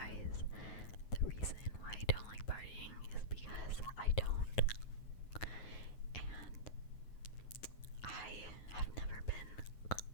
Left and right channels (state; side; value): late; right; 9.4 ms